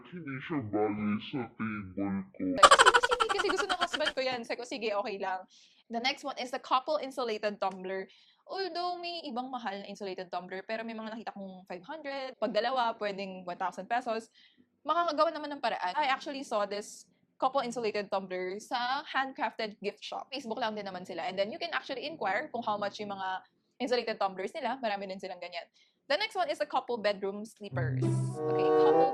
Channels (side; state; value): both; identical; correlation 1.00